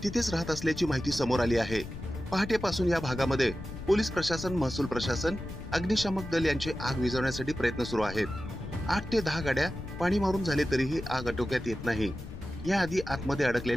तिथेच राहत असल्याची माहिती समोर आली आहे। पहाटेपासून या भागामध्ये पोलीस प्रशासन, महसूल प्रशासन, अग्निशामक दल यांचे आग विझवण्यासाठी प्रयत्न सुरू आहेत। 8 ते 10 गाड्या पाणी मारून झाले तरीही आग आटोक्यात येत नाही। याआधी आतमध्ये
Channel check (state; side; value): noise; left; rumble, 11 dB below the sound